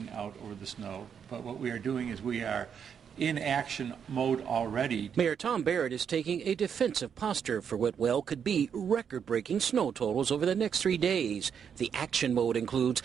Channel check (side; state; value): left; quieter; 7.5 dB